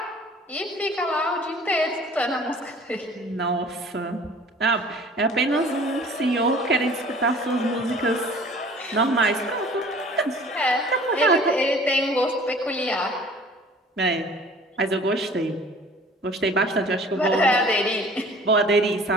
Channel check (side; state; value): both; normal; correlation 0.49